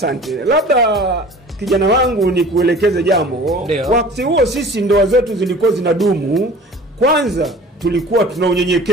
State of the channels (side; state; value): both; normal; correlation 0.44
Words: Labda kijana wangu ni kuelekeze jambo. Wakati huo sisi ndoa zetu zilikuwa zinadumu. Kwanza tulikuwa tuna